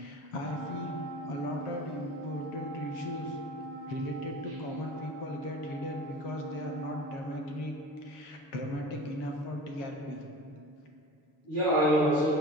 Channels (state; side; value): late; right; 7.0 ms